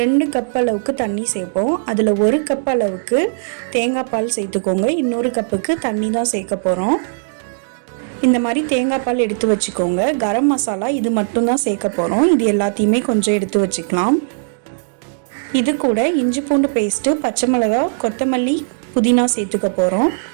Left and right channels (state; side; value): silent; left; digital silence